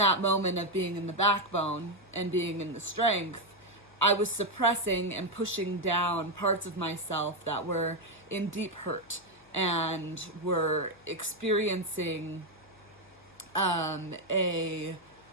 moment of being in the backbone and being in the strength, I was suppressing and pushing down parts of myself that were in deep hurt and were experiencing I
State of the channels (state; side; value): noise; left; hum, 29 dB below the sound